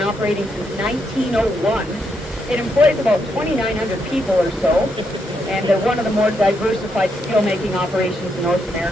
since 1901. It employs about 2,900 people or so, and they're one of the more diversified steelmaking operations in North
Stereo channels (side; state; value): both; normal; correlation 0.79